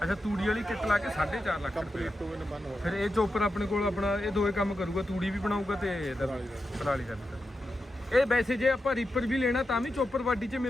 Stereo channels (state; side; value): normal; both; correlation 0.89